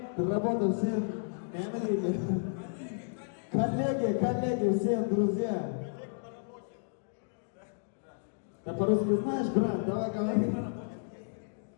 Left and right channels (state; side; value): silent; right; digital silence